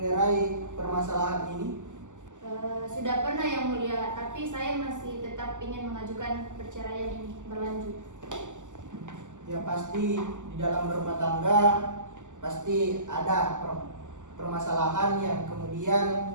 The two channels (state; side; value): late; left; 0.86 ms